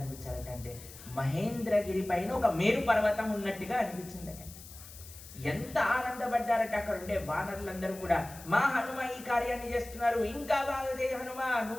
అంటే మహేంద్రగిరి పైన ఒక మేరు పర్వతం ఉన్నట్టుగా అనిపించిందట. ఎంత ఆనందపడ్డారట అక్కడ ఉండే వానరులందరూ కూడా. మా హనుమ ఈ కార్యాన్ని చేస్తున్నారు, ఇంకా బాగా చేయ హనుమ,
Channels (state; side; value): noise; left; hiss, 17 dB below the sound